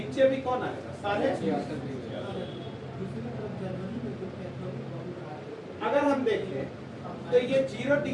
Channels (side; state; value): both; identical; correlation 1.00